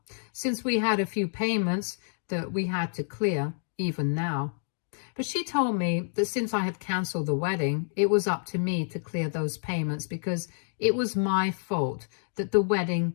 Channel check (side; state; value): right; silent; digital silence